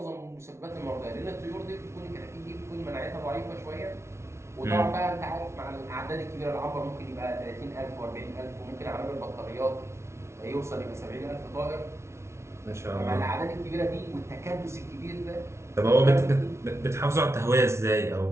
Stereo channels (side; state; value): left; late; 0.13 ms